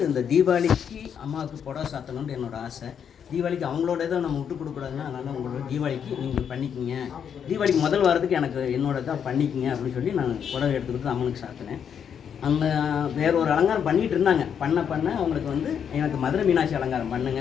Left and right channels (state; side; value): quieter; right; 7.9 dB